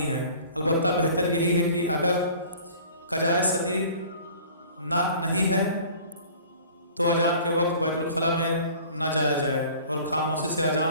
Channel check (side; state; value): both; inverted; correlation -0.47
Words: है। अलबत्ता बेहतर यही है कि अगर कजाए सदीद नहीं है तो अजान के वक्त बैतुल खला में न जाया जाए और खामोशी से